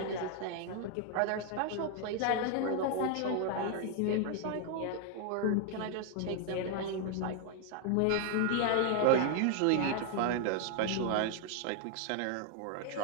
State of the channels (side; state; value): both; different; correlation 0.00